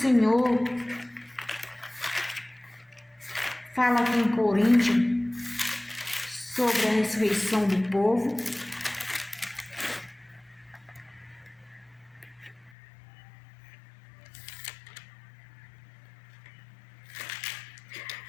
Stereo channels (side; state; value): right; drops out; at 12.7 s